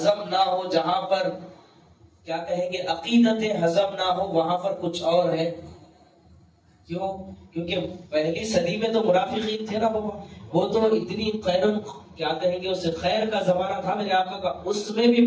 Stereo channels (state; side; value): identical; both; correlation 1.00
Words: نہ ہو، جہاں پر کیا کہیں گے عقیدت ہضم نہ ہو، وہاں پر کچھ اور ہے. کیوں؟ کیونکہ پہلی صدی میں تو منافقین تھے نا بابا، وہ تو اتنی کیا کہیں گے اسے خیر کا زمانہ تھا میرے آقا کا، اس میں بھی